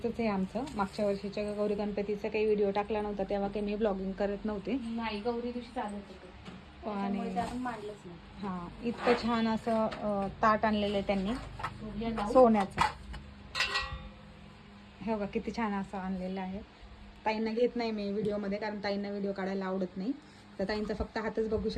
आहे आमचं. मागच्या वर्षीच्या गौरी गणपतीचा काही व्हिडिओ टाकला नव्हता तेव्हा काही मी ब्लॉगिंग करत नव्हते. नाही, गौरी दिवशी चालत होतं आणि त्यामुळे ते आपण मांडलंच नाही. हां, इतकं छान असं ताट आणलेलं आहे त्यांनी सूर्य लावून सोन्याचं. हे बघा किती छान असं आणलेलं आहे. ताईंना घेत नाही मी व्हिडिओमध्ये, कारण ताईंना व्हिडिओ काढायला आवडत नाही. तर ताईंचा फक्त हातच बघू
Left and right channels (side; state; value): both; identical; correlation 1.00